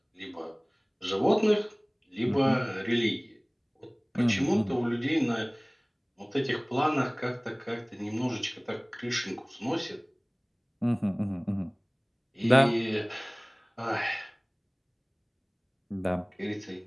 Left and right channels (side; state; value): both; identical; correlation 1.00